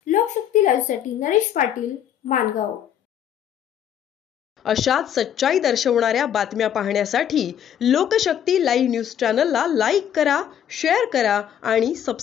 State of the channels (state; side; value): quieter; right; 9.6 dB